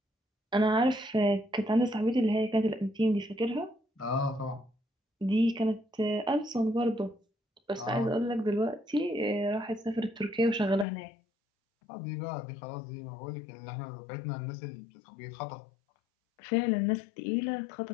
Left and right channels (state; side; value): drops out; right; at 10.9 s